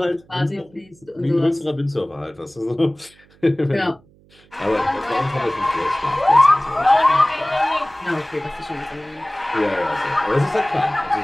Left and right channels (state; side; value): noise; right; hum, 29 dB below the sound